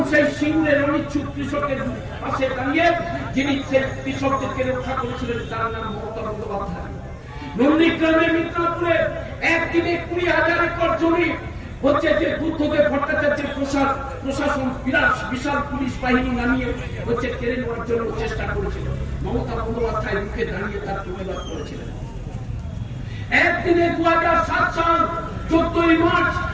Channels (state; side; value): identical; both; correlation 1.00